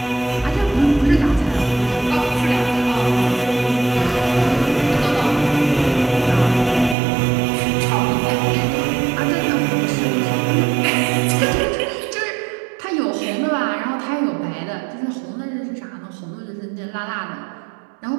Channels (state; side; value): drops out; left; at 7.0 s